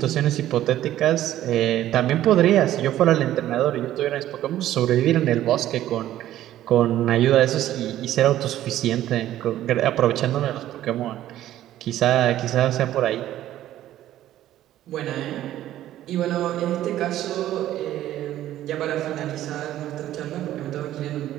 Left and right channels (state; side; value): quieter; left; 13.1 dB